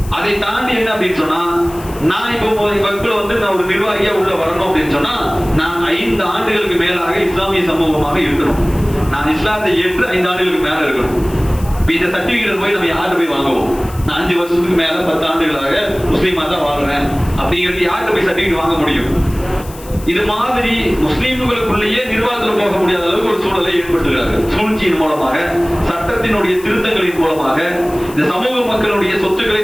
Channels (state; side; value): noise; left; hiss, 19 dB below the sound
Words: அதை தாண்டி என்ன அப்படின்னு சொன்னா, நான் இப்போ வக்ஃபுல நான் ஒரு நிர்வாகியா உள்ள வரணும் அப்படின்னு சொன்னா, நான் 5 ஆண்டுகளுக்கு மேலாக இஸ்லாமிய சமூகமாக இருக்கணும். நான் இஸ்லாத்தை ஏற்று 5 ஆண்டுகளுக்கு மேல இருக்கணும். இந்த சர்டிபிகேட் போய் நம்ம யார்கிட்ட போய் வாங்குவோம்? நான் 5 வருஷத்துக்கு மேல 10 ஆண்டுகளாக முஸ்லீமா தான் வாழ்றேன் அப்படிங்கிறது யார்கிட்ட போய் சர்டிபிகேட் வாங்க முடியும்? இது மாதிரி முஸ்லீம்களுக்குள்ளேயே நிர்வாகத்தில் போக முடியாத அளவுக்கு ஒரு சூழலை ஏற்படுத்துகிறார்கள். சூழ்ச்சியின் மூலமாக, சட்டத்தினுடைய திருத்தங்களின் மூலமாக இந்த சமூக மக்களுடைய சொத்துக்களை